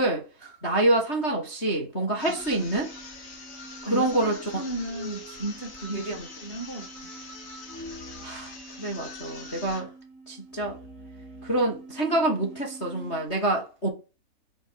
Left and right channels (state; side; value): late; right; 3.2 ms